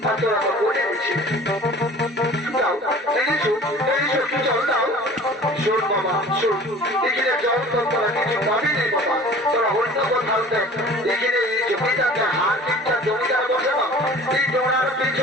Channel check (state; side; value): normal; both; correlation 0.45